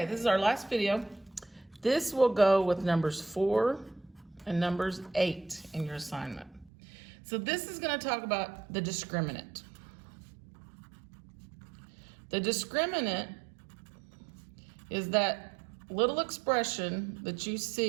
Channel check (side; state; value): left; drops out; at 6.7 s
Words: this is our last video. This will go with numbers 4 and numbers 8 in your assignment. So this is going to talk about the discriminant. The discriminant is that little expression that you